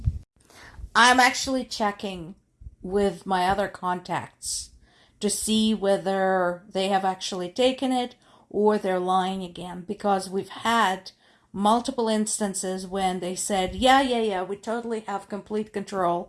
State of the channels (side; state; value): both; identical; correlation 1.00